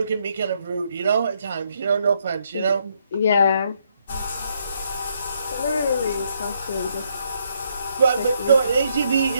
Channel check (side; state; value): both; inverted; correlation -0.74